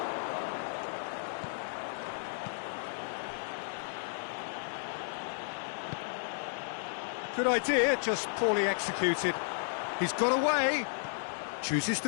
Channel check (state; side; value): silent; right; digital silence